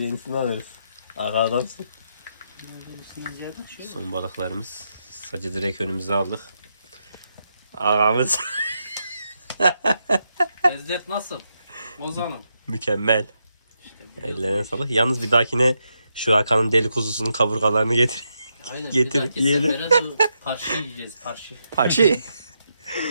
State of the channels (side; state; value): both; inverted; correlation -0.82